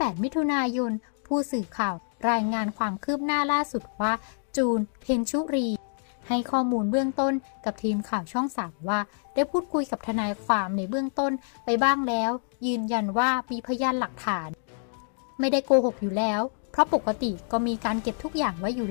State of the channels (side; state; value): right; silent; 60 dB below the other